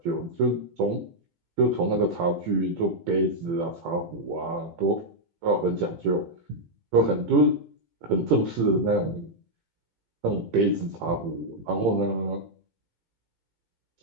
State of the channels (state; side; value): late; left; 18 ms